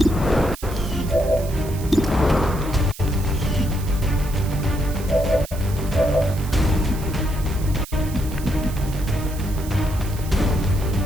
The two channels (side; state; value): right; noise; hiss, 16 dB below the sound